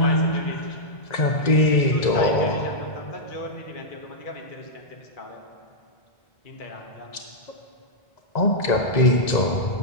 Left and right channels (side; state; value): right; late; 1.9 ms